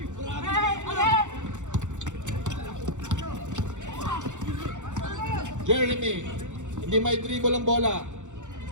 Jeremy, hindi may dribble ang bola.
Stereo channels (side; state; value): left; late; 0.85 ms